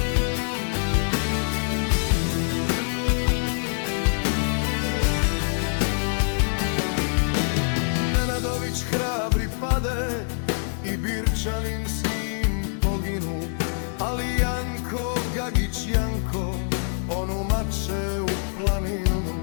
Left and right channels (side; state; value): right; silent; 62 dB below the other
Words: Nenadović hrabri pade i Birčanin s njim poginu, ali Janko, Gagić Janko, on umače u